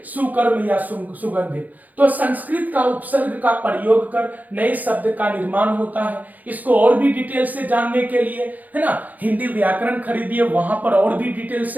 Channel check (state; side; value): late; left; 0.082 ms